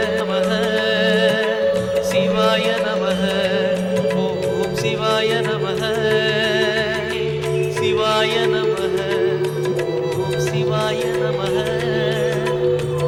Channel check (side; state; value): both; identical; correlation 1.00